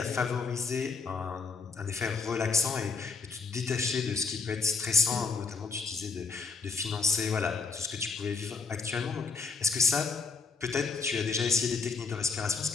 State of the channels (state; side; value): quieter; right; 4.7 dB